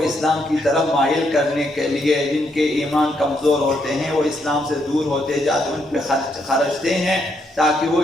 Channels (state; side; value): normal; both; correlation 0.76